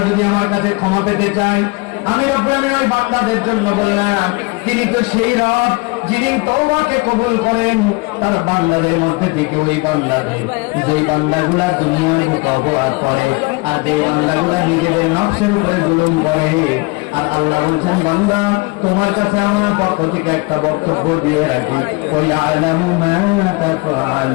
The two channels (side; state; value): right; quieter; 26.8 dB